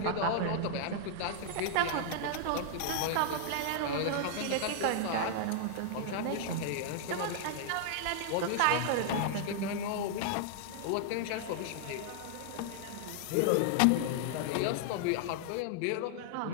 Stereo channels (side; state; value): both; different; correlation 0.00